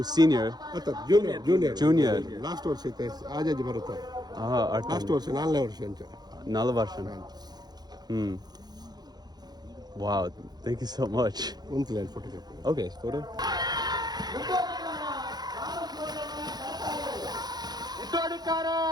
senior. Junior last ವರ್ಷ ಐತೆ ಆಜಾಜಿ ಬರುತ್ತೆ Artan. ಲಾಸ್ಟ್ ವರ್ಷ 4ನೇ ವರ್ಷ ಅಂತ 4 ವರ್ಷ. Wow, thank you so much. ಒಂದು ಲೈನ್ ಫೋಟೋ Okay, photo.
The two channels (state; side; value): late; left; 0.20 ms